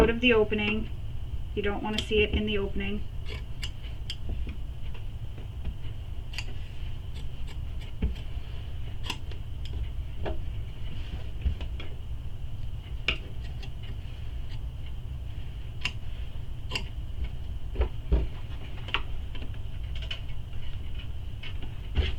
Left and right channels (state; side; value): identical; both; correlation 1.00